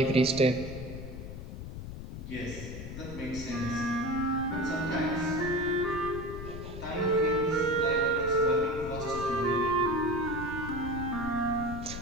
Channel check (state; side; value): noise; left; rumble, 9 dB below the sound